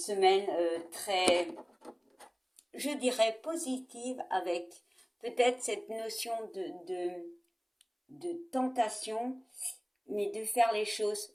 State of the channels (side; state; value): both; identical; correlation 1.00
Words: très, je dirais, positive avec peut-être cette notion de tentation, mais de faire les choses